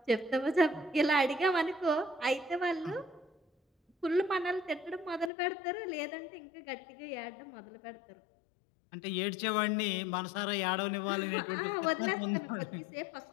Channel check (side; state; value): right; drops out; at 5.3 s